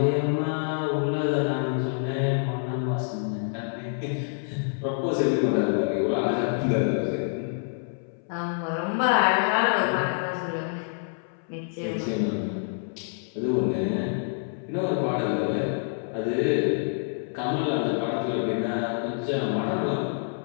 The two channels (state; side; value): silent; right; 60 dB below the other